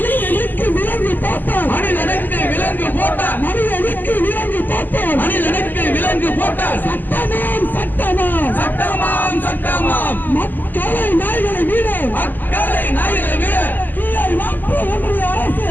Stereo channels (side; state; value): right; late; 0.088 ms